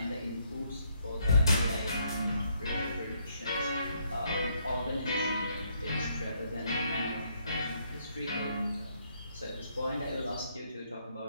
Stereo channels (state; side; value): inverted; both; correlation -0.72